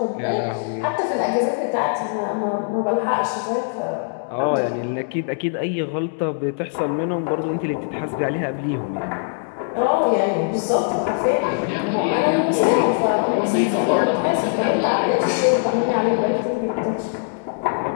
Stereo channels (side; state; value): right; silent; digital silence